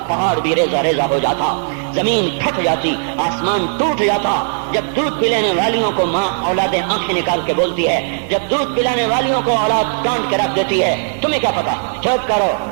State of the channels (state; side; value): silent; left; 57 dB below the other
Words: پہاڑ بھی ریزہ ریزہ ہو جاتا، زمین پھٹ جاتی، آسمان ٹوٹ جاتا۔ جب دودھ پلانے والیوں کو ماں اولادیں آنکھیں نکال کے بولتی ہے، جب دودھ پلانے والیوں کو اولاد ڈانٹ کے رکھ دیتی ہے، تمہیں کیا پتا، چپ کرو،